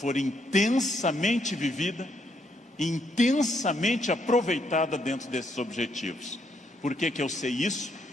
intensamente vivida, intensamente aproveitada dentro desses objetivos. Por que que eu sei isso?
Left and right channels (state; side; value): normal; both; correlation 0.74